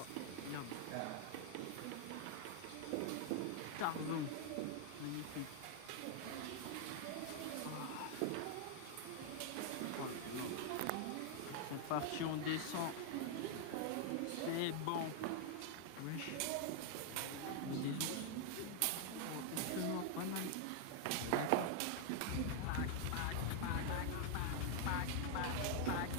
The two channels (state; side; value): different; both; correlation 0.00